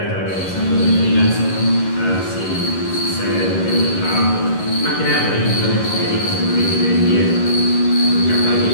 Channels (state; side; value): late; right; 11 ms